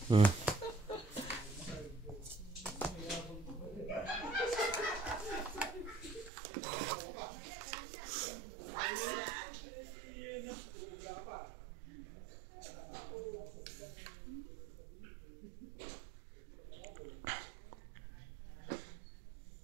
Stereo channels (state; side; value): drops out; left; at 6.3 s